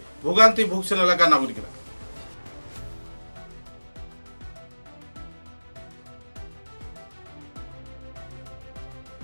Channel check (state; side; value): inverted; both; correlation -1.00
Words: ভোগান্তি ভুগছেন এলাকার নাগরিকরা।